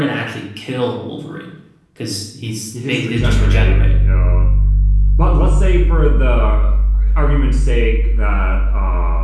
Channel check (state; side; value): identical; both; correlation 1.00